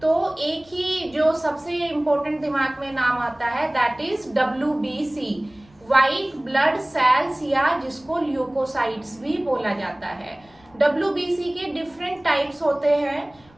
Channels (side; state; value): left; noise; rumble, 29 dB below the sound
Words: तो एक ही जो सबसे इम्पोर्टेंट दिमाग में नाम आता है that is WBC, white blood cells, या जिसको ल्यूकोसाइट्स भी बोला जाता है। WBC के डिफरेंट टाइप्स होते हैं।